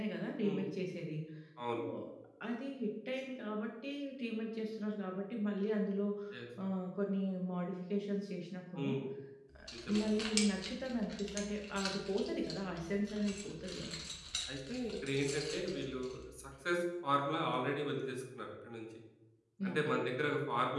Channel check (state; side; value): identical; both; correlation 1.00